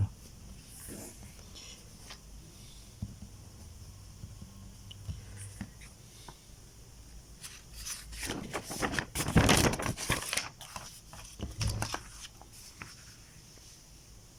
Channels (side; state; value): both; identical; correlation 1.00